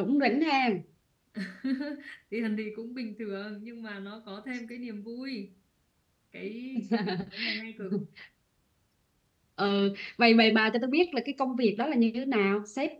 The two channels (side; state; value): both; identical; correlation 1.00